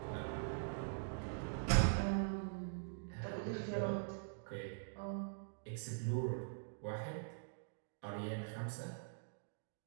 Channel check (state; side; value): silent; left; digital silence